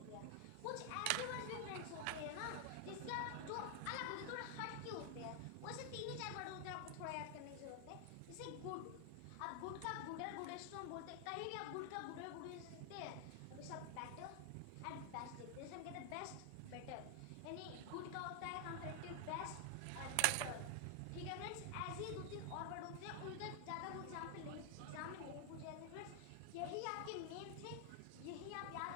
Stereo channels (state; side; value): different; both; correlation 0.00